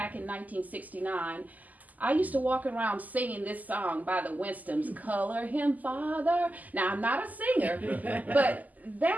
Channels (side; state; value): left; late; 0.080 ms